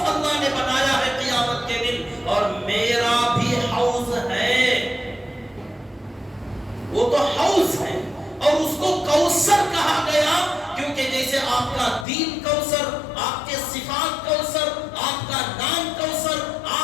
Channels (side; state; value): right; drops out; at 12.1 s